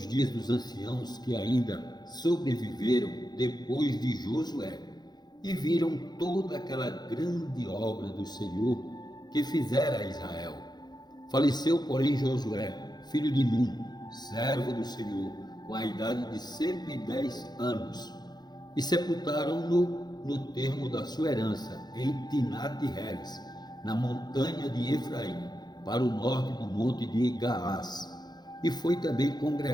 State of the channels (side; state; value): right; late; 0.20 ms